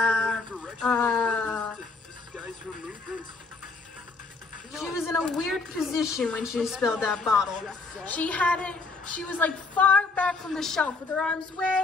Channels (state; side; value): quieter; right; 4.0 dB